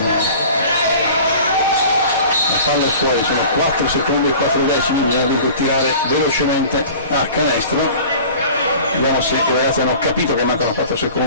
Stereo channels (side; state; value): both; inverted; correlation -0.42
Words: la palla è fuori, sono 4 secondi e 4 decimi, bisogna tirare velocemente a canestro. Vediamo se i ragazzi hanno capito che mancano 4